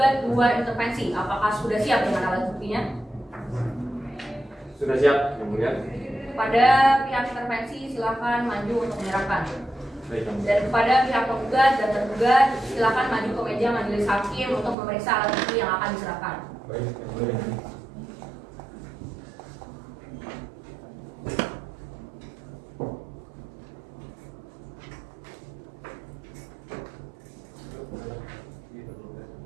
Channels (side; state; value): left; drops out; at 14.8 s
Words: dua intervensi, apakah sudah siap dengan alat buktinya? sudah siap, Yang Mulia. Pada pihak intervensi silakan maju untuk menyerahkan. Baik, Yang Mulia. Dan kepada pihak penggugat dan tergugat silakan maju ke meja majelis hakim untuk memeriksa alat bukti yang akan diserahkan. Baik, Yang Mulia.